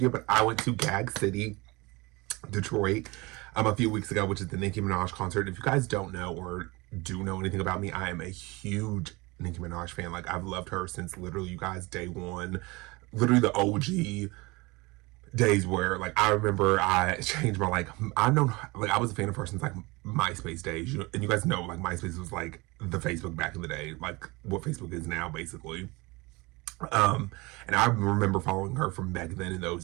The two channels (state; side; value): quieter; left; 24.2 dB